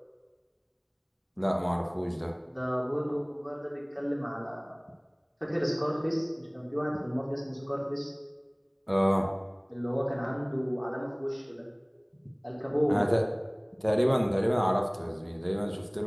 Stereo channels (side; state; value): both; identical; correlation 1.00